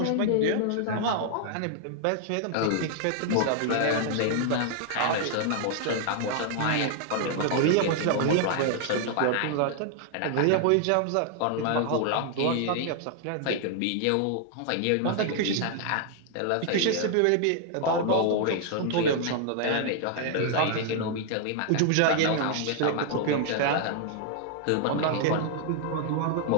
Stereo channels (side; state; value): both; different; correlation 0.00